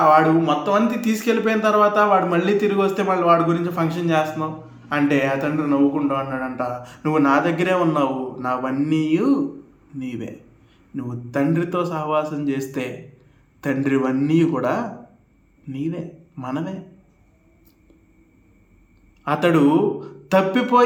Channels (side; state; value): both; identical; correlation 1.00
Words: మొత్తం అంతా తీసుకెళ్ళిపోయిన తర్వాత వాడు మళ్ళీ తిరిగి వస్తే మళ్ళీ వాడి గురించి ఫంక్షన్ చేస్తున్నావు అంటే ఆ తండ్రి నవ్వుకుంటూ అన్నాడంట, నువ్వు నా దగ్గరే ఉన్నావు, నావన్నీ నీవే. నువ్వు తండ్రితో సహవాసం చేస్తే తండ్రివన్నీ కూడా నీవే, మనమే. అతడు